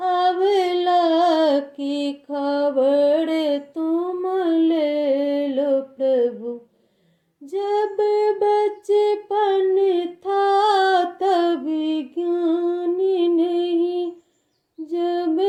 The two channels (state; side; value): identical; both; correlation 1.00